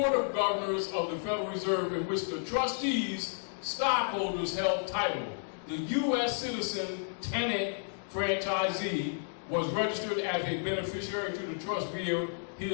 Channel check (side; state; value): right; silent; digital silence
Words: of Governors of the Federal Reserve, in which the trustees, stockholders held title. The U.S. citizen tenant franchisee was registered as a beneficiary to the trust via